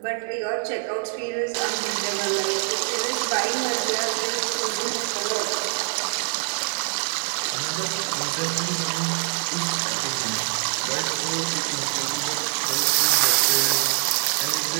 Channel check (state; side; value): silent; left; digital silence